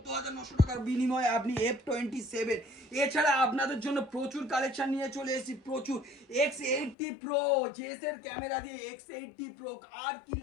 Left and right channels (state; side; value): drops out; right; at 7.0 s